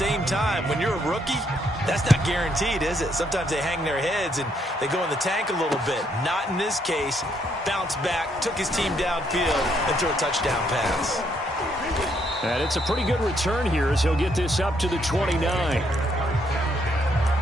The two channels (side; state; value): both; normal; correlation 0.72